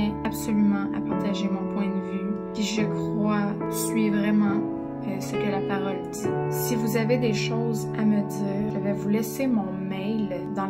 absolument à partager mon point de vue, qui je crois suit vraiment ce que la parole dit. Si vous avez des choses à me dire, je vais vous laisser mon mail dans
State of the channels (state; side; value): identical; both; correlation 1.00